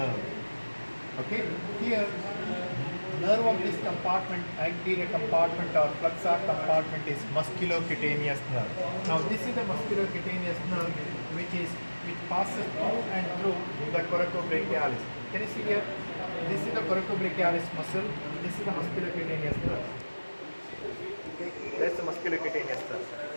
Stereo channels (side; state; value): both; inverted; correlation -1.00